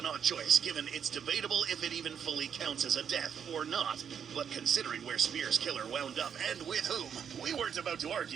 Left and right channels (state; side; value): quieter; left; 7.8 dB